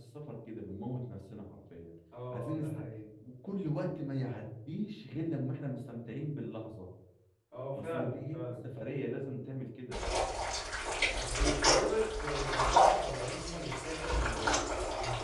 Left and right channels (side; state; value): both; identical; correlation 1.00